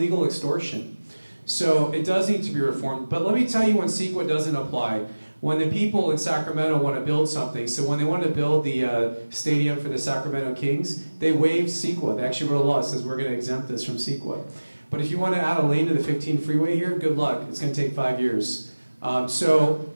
extortion. So it does need to be reformed. But let me tell you when CEQA doesn't apply. When the people in Sacramento want to build something, so when they want to build the stadium for the Sacramento Kings, they waived CEQA. They actually wrote a law that says we're going to exempt this from CEQA. But if you want to add a lane to the 15 freeway here, good luck. It's going to take 5 years. So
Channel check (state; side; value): inverted; both; correlation -1.00